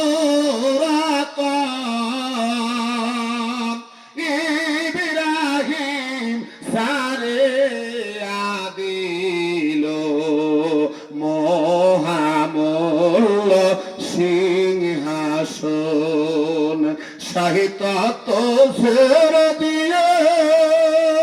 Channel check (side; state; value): both; identical; correlation 1.00